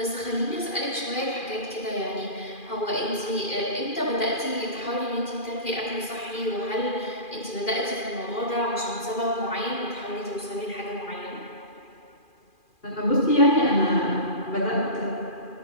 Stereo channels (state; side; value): late; right; 2.4 ms